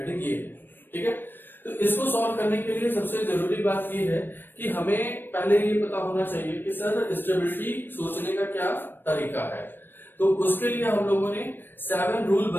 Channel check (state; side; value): late; right; 0.095 ms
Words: ये है, ठीक है। तो इसको सॉल्व करने के लिए सबसे जरूरी बात ये है कि हमें पहले ये पता होना चाहिए कि सर स्टेबिलिटी सोचने का क्या तरीका है। तो उसके लिए हम लोगों ने 7 रूल